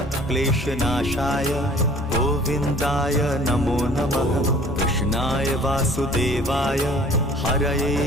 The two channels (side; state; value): both; normal; correlation 0.51